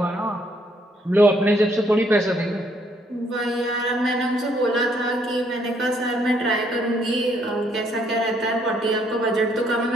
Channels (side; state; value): both; normal; correlation 0.69